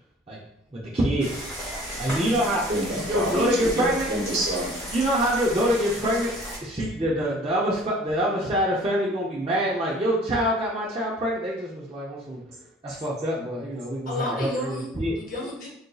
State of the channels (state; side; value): normal; both; correlation 0.51